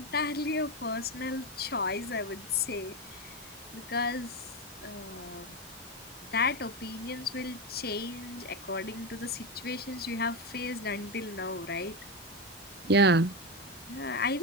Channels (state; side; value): normal; both; correlation 0.13